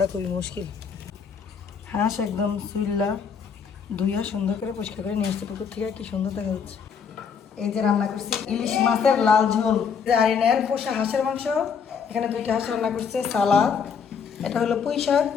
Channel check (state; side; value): quieter; right; 6.5 dB